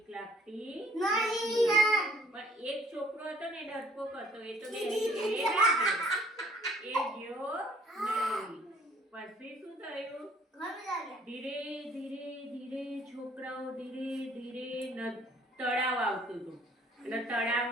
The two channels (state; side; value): normal; both; correlation 0.60